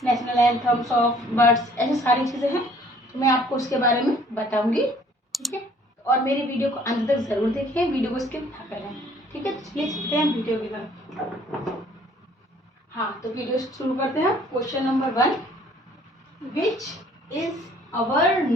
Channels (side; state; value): both; normal; correlation 0.57